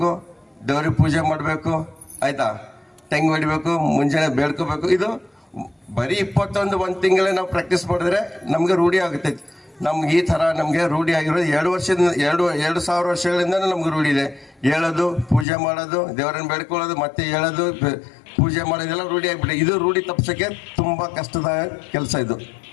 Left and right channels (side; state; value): right; drops out; at 15.5 s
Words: ದೇವ್ರಿಗೆ ಪೂಜೆ ಮಾಡಬೇಕು, ಆಯ್ತಾ, ತೆಂಗು ಹೊಡಿಬೇಕು, ಮುಂಜಾನೆ ಬೇಡ್ಕೋಬೇಕು. ಇದು ಬರೀ 1 ತಿಂಗಳೇ ನಾವು ಪ್ರಾಕ್ಟೀಸ್ ಮಾಡಿದ್ರೆ ನಮಗೆ ರೂಢಿ ಆಗುತ್ತೆ. ನಮ್ಗೆ ಈ ಥರ ನಮಗೆ ರೂಢಿ ಆಗಿರೋದು 2,000 ವರ್ಷಗಳಿಂದ ನಮ್ಗೆ ರೂಢಿ ಇದೆ. ಹೇಳೋದು, ಪೂಜೆ ಮಾಡೋದು, ದೇವರನ್ನು ಬೇಡ್ಕೊಳ್ಳೋದು, ಮತ್ತೆ ಹೇಳೋದು, ಪೂಜೆ ಮಾಡೋದೆಲ್ಲ ರೂಢಿ ಆಗಿಬಿಟ್ಟೆ. ಇದು ರೂಢಿ ತಪ್ಪಿಸೋಕ್ಕೆ ತುಂಬ ಕಷ್ಟದ ಕೆಲಸ ಇದು.